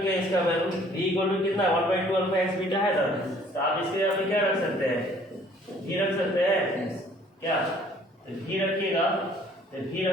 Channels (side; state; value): both; normal; correlation 0.57